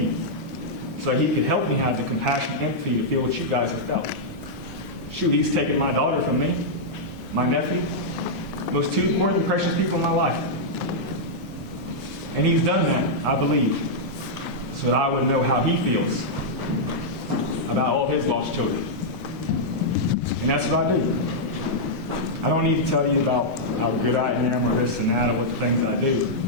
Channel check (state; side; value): normal; both; correlation -0.07